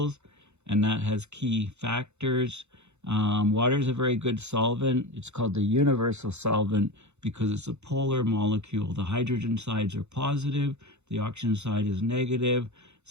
and that has key factors. Water is a very good solvent. It's called the universal solvent because it's a polar molecule. The hydrogen sides are positive, the oxygen side is negative.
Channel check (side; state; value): left; late; 0.82 ms